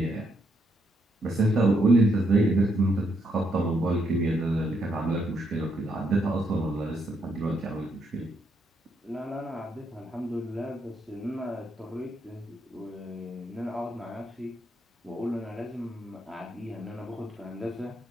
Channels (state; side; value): normal; both; correlation 0.76